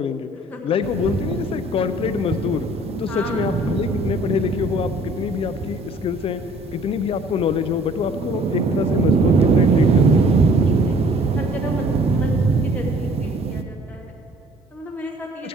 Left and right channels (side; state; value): both; normal; correlation 0.54